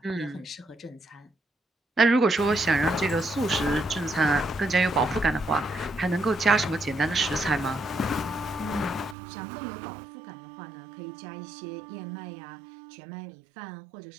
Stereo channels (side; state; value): left; drops out; at 9.2 s